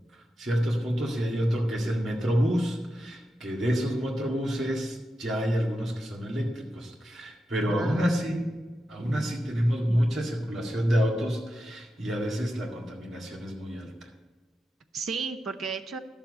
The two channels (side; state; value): both; normal; correlation 0.89